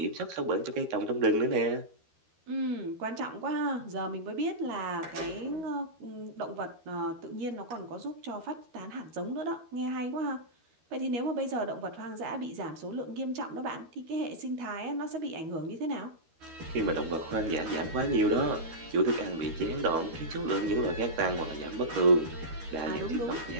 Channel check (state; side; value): late; left; 12 ms